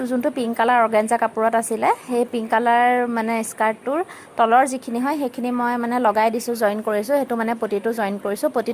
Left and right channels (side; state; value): both; identical; correlation 1.00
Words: যোনটো পিংক কালাৰ অৰ্গেঞ্জা কাপোৰত আছিলে, সেই পিংক কালাৰ মানে স্কাৰ্টটোৰ তলৰ যিখিনি হয় সেইখিনি মই মানে লগাই দিছোঁ, জইন কৰিছোঁ। সেইটো মানে পটিটো জইন কৰিছোঁ।